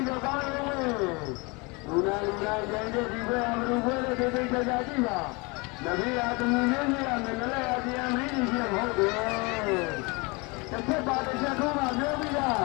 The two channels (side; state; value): right; quieter; 27.9 dB